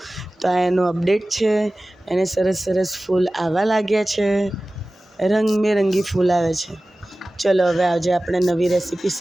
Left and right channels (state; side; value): normal; both; correlation 0.97